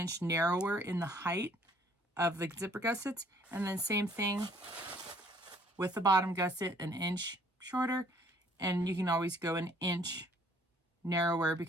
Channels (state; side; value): normal; both; correlation 0.60